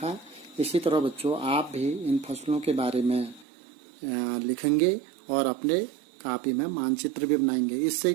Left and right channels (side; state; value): left; drops out; at 3.5 s